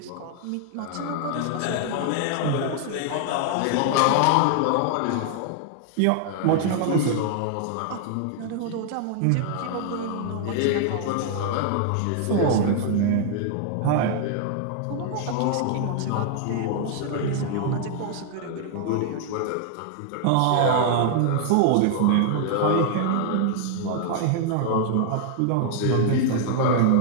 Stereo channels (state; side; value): different; both; correlation 0.00